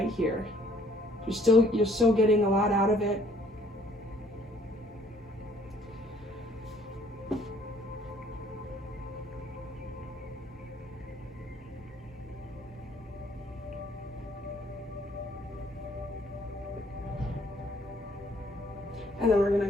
here. You're still getting a lot out of it. And then we're gonna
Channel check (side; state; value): both; normal; correlation 0.61